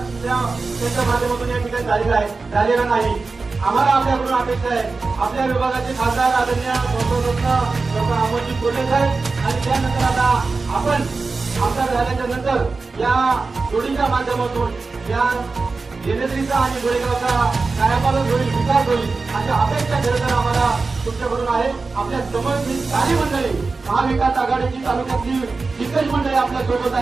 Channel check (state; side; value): quieter; left; 4.0 dB